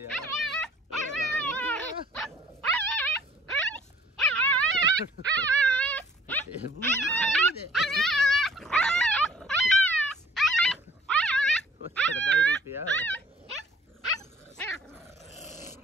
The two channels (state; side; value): normal; both; correlation 0.56